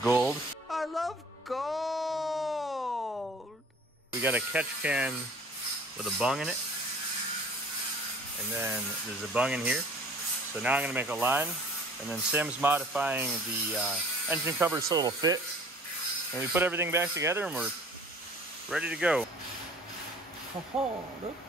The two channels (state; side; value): normal; both; correlation 0.50